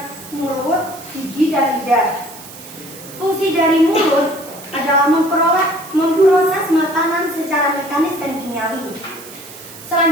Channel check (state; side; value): noise; right; hiss, 16 dB below the sound